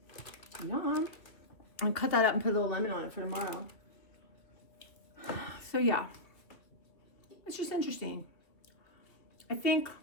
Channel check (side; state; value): right; late; 2.4 ms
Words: Yum. I'll cut that up and put a little lemon on it for tomorrow. So yeah, it's just interesting. I think,